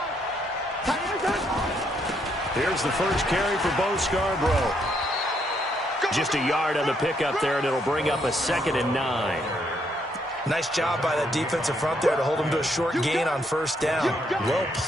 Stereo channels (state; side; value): normal; both; correlation 0.74